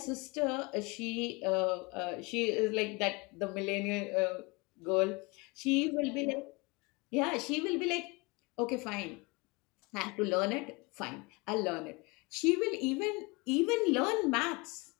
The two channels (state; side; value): quieter; right; 26.8 dB